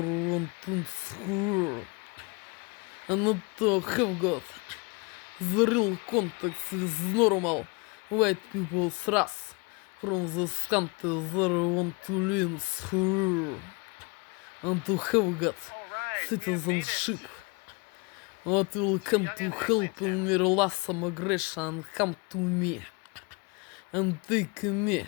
want to swear. And not to have got the real context with normal white people's race from those countries that want to live free and to have got Alright, citizenship. What will come to help in me last migration and come to me and take me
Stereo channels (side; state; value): right; quieter; 29.2 dB